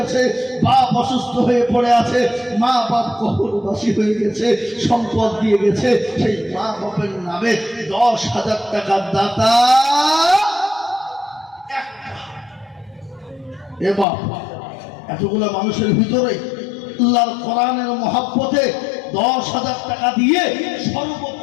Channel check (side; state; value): right; drops out; at 14.1 s